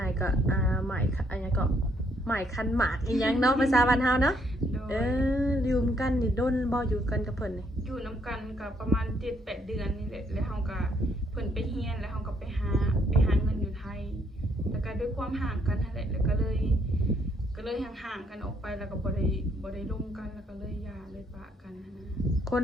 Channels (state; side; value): normal; both; correlation 0.70